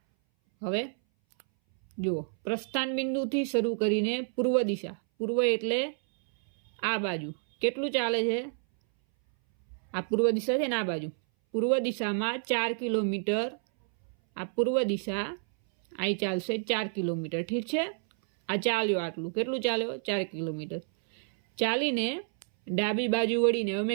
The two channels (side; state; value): left; silent; 58 dB below the other